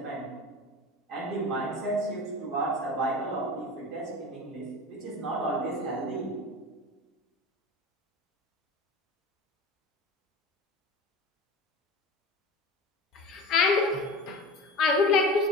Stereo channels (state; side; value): normal; both; correlation 0.32